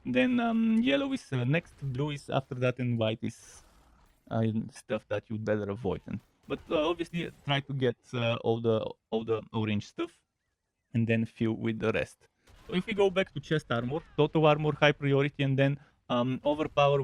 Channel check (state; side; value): identical; both; correlation 1.00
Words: then yellow is next, blue is after that, and white is stuff that you'd better avoid. But obviously try to get all the orange stuff and then fill with the rest. So if we go back to chest armor, total armor, high priority, and then overpower